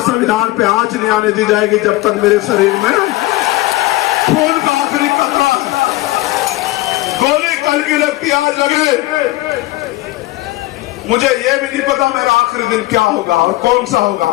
पे आंच नहीं आने दी जाएगी जब तक मेरे शरीर में खून का आखिरी कतरा है। गोली कल की लगती आज लगे। मुझे ये भी नहीं पता मेरा आखिरी दिन क्या होगा और कौन सा होगा,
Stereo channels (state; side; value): quieter; right; 18.7 dB